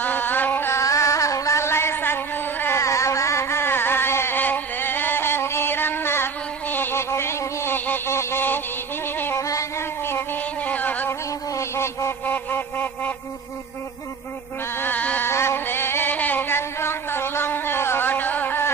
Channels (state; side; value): quieter; left; 5.3 dB